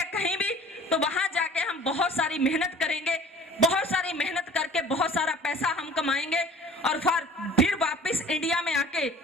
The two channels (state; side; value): normal; both; correlation 0.48